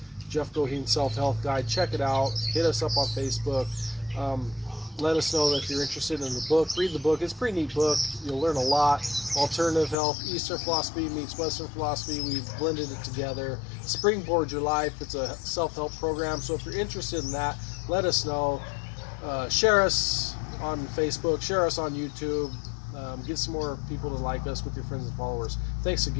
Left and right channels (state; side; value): drops out; right; at 10.0 s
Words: Jeff Goheen Self-Health Guide. Check it out. Hit us up on Facebook. Let us know that if you're interested in the book. Read the book. It's a pretty neat book. You'll learn a lot. Alternative health, Eastern philosophy meets Western philosophy. We've blended it together. Springboard Your Life. It's a self-help program. So if you're interested in that, let us know. Share us on Facebook. Share us on YouTube. Get some more people to like us with your friends and followers. Thanks